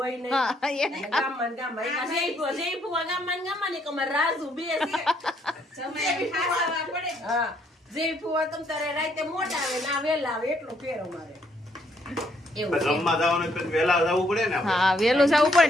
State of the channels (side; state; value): both; normal; correlation 0.70